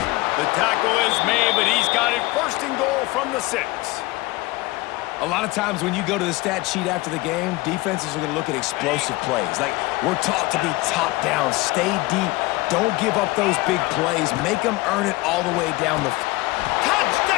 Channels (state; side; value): quieter; right; 21.1 dB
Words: The tackle is made, but he's got it 1st and goal from the 6. A lot of times when you go to the stat sheet after the game, defenses are going to look at explosive plays. Like, we're taught to be top down, stay deep, don't give up those big plays, make them earn it all the way down the field.